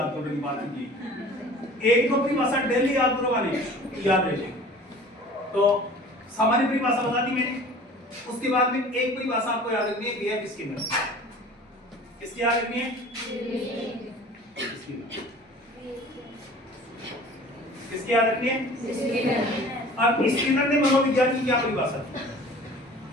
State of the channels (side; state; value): both; normal; correlation 0.45